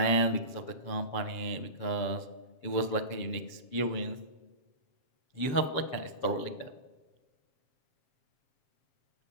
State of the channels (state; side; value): late; right; 7.4 ms